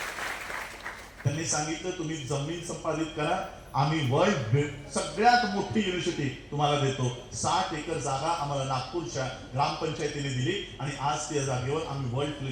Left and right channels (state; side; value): identical; both; correlation 1.00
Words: त्यांनी सांगितलं तुम्ही जमीन संपादित करा, आम्ही वर्ल्ड सगळ्यात मोठी युनिव्हर्सिटी तुम्हाला देतो. 60 एकर जागा आम्हाला नागपूरच्या ग्रामपंचायतीने दिली आणि आज त्या जागेवर आम्ही वर्ल्ड